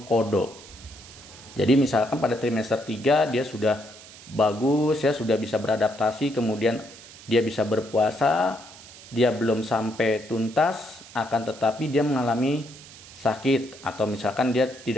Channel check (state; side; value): noise; right; hiss, 19 dB below the sound